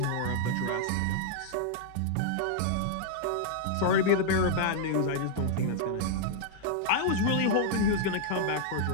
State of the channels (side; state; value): both; different; correlation -0.01